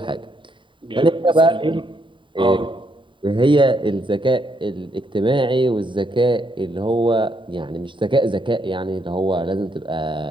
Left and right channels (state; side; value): late; left; 0.24 ms